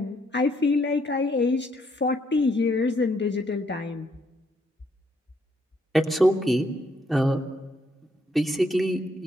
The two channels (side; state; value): both; normal; correlation 0.72